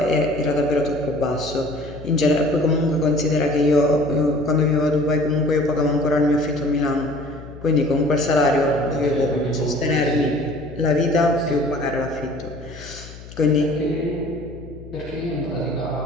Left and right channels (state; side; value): noise; left; hum, 16 dB below the sound